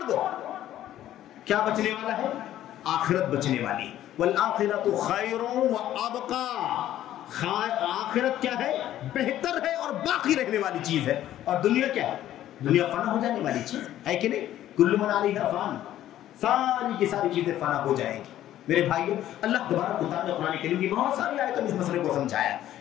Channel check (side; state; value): right; quieter; 12.7 dB